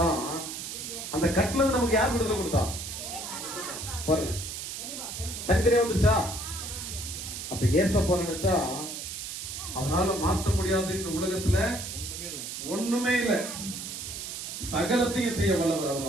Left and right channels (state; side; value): noise; right; hiss, 7 dB below the sound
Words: அந்த கட்டுல இருந்து நமக்கு யார் விடுதலை கொடுத்தா? பாருங்க, தனித்தனியா வந்துருச்சா? அப்ப ஏசப்பா நினைச்சா அவனால மாத்த முடியாது இந்த உலகத்துல ஒண்ணுமே இல்ல, சகலத்தையும் செய்ய வல்லவர்